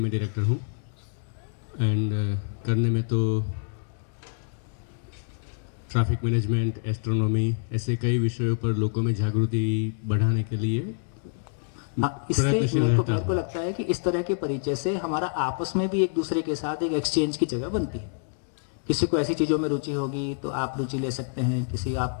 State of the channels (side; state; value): right; silent; digital silence